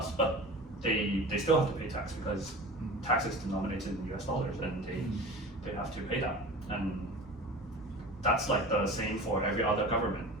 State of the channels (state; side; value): normal; both; correlation 0.36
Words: but they still have to pay tax because tax is denominated in US dollars, and they have to pay that. And that's like the same for every other government